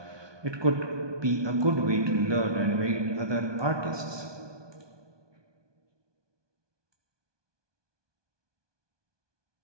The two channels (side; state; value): left; late; 1.2 ms